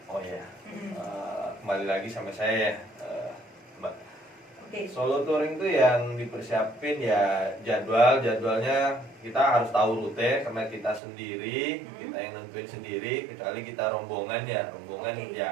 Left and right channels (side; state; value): left; drops out; at 11.0 s